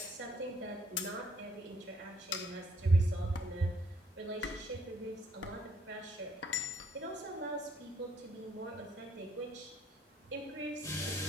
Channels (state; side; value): normal; both; correlation 0.66